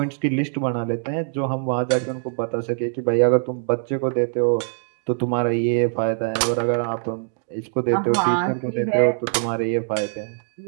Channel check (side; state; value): left; silent; digital silence